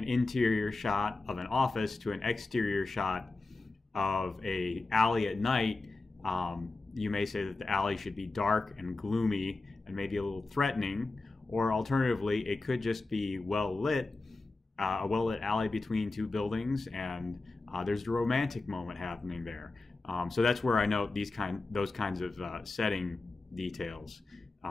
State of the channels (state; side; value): quieter; right; 3.4 dB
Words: interior shot of an office to an exterior shot of a alley at night, you may say that the alley should be dark and gloomy and maybe a little threatening, or alternatively, it could just be well lit, a well-lit alley between two buildings, and there's a romantic moment happening there. So that's where I note those kinds of setting details